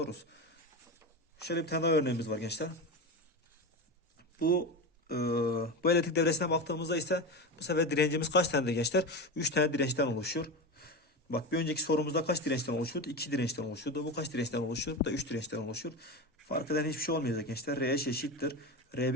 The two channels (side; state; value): both; normal; correlation 0.22